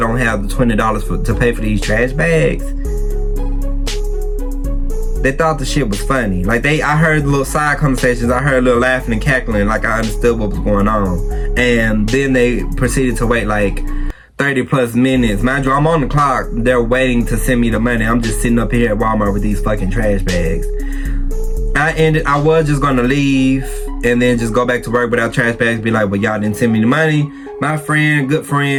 have the $20 to pay for these trash bags. They thought the shit was funny. Like I heard little side conversations. I heard a little laughing and cackling, like I understood what was going on. And then they proceeded to wait like 30 plus minutes. Mind you, I'm on the clock. They're waiting to send me the money. I'm just sitting up here at Walmart with these fucking trash bags. I was just gonna leave and then just go back to work without trash bags, be like, well, y'all didn't send me the money. My good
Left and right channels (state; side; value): identical; both; correlation 1.00